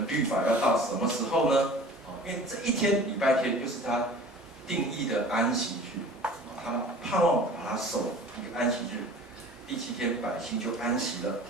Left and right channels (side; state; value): both; normal; correlation 0.43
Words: 律法，要到什么时候呢？因为这1天礼拜天就是他定义的安息日，他们盼望把它守一个安息日。第7天百姓就安息了。